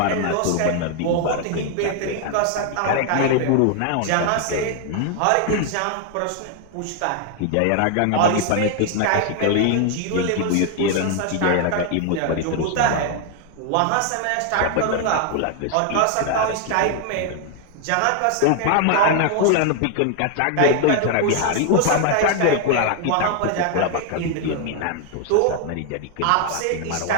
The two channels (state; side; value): different; both; correlation 0.00